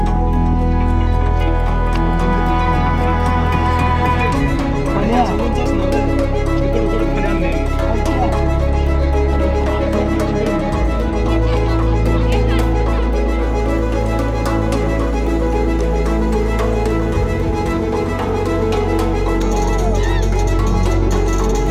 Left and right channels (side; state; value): both; identical; correlation 1.00